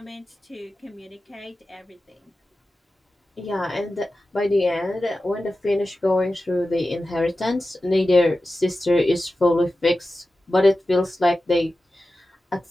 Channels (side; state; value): both; normal; correlation 0.93